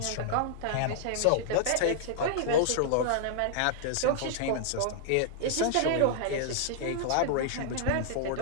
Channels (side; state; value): both; different; correlation -0.01